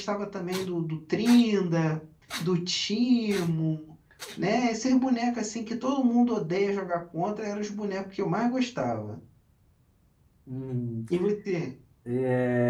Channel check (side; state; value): both; identical; correlation 1.00